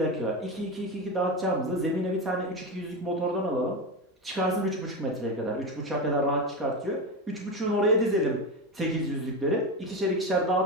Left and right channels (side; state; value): both; normal; correlation 0.18